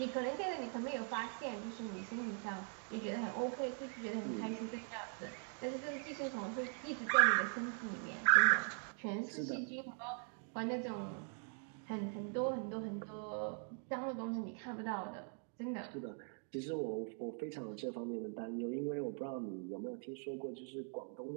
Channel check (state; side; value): silent; left; 50 dB below the other